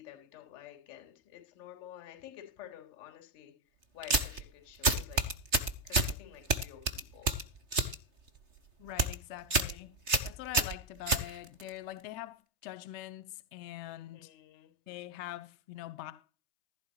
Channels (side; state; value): left; late; 3.3 ms